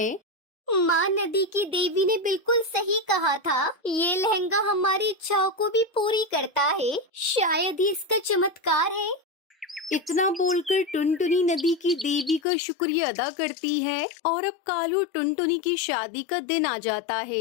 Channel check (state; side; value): drops out; right; at 12.4 s